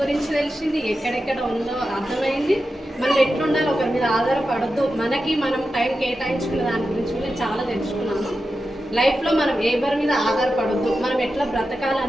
గురించి తెలిసింది, ఎక్కడెక్కడ ఉందో అర్థమైంది. మనం ఎట్లుండాలి, ఒకరి మీద ఆధారపడద్దు, మనకి మనం టైం కేటాయించుకునే దాని గురించి కూడా చాలా తెలుసుకున్నాను. లైఫ్లో మనం ఎవరి మీద ఆధారపడద్దు, మనం ఎట్లా బ్రతకాలి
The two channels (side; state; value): both; normal; correlation 0.91